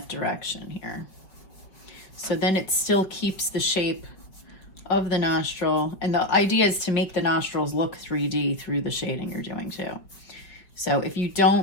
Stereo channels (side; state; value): right; late; 5.3 ms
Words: direction here. So then it still keeps the shape of the nostril, and the idea is to make the nostrils look 3D through the shading you're doing too. So if you